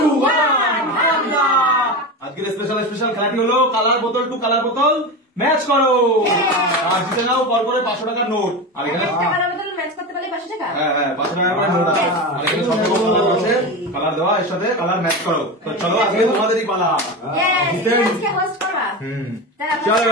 1 হামলা। আজকের স্পেশাল খেলাটি হলো কালার বোতল টু কালার বোতল ম্যাচ করো, আর জিতে নাও পর করে 500 টাকার নোট। আর এখানে কালার বোতল ম্যাচ করতে পারলে 500 টাকা। হ্যাঁ 500 টাকার করে নোট আছে। আর এখানে সবগুলো কালার আছে, কালার দেওয়া, এর সাথে কালার ম্যাচ করো। তো চলো আজকে তোমাদেরই পালা। আজকে হোস্ট করবা।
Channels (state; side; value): normal; both; correlation 0.22